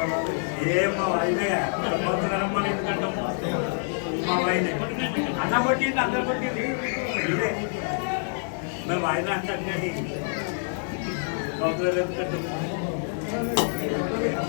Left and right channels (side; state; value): right; silent; 60 dB below the other